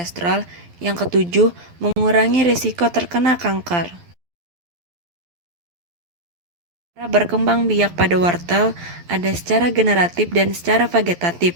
Yang ketujuh, mengurangi risiko terkena kanker. Cara berkembang biak pada wortel ada secara generatif dan secara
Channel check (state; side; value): late; left; 12 ms